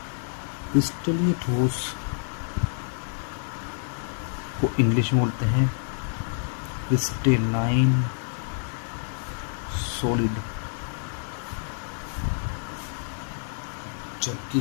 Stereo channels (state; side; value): silent; right; digital silence